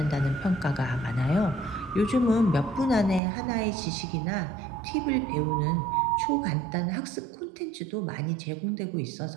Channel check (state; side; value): drops out; left; at 3.2 s